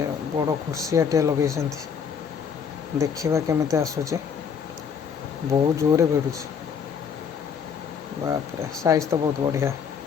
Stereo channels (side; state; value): right; quieter; 6.8 dB